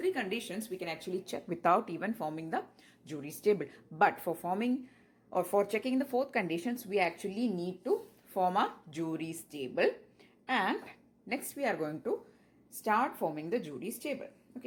conditions we can actually check without even forming the jury's table. But for forming or for checking the fourth conditions, we actually need to form a jury's table. And next we are going to start forming the jury's table.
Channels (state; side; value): identical; both; correlation 1.00